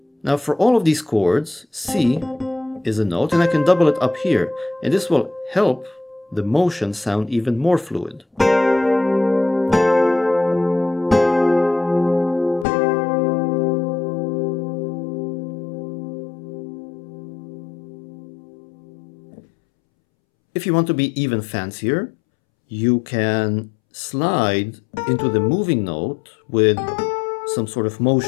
Now for all of these chords, C is a note, and I can double it up here, and this will help the motion sound even more fluid. If you want to be even fancier, you can slide into the moving note with some sort of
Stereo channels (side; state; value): right; drops out; at 12.7 s